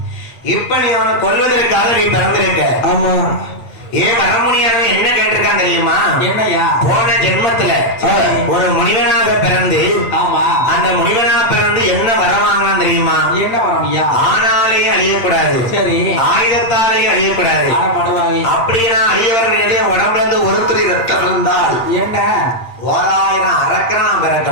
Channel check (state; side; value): late; right; 8.7 ms